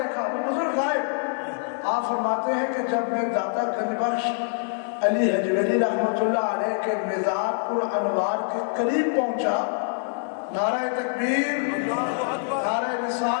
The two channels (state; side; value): silent; right; 62 dB below the other